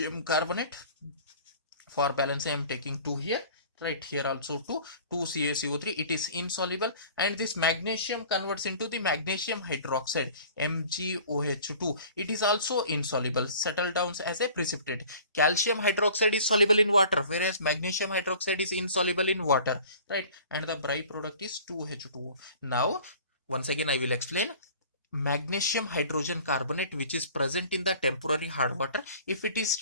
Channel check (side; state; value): both; inverted; correlation -0.47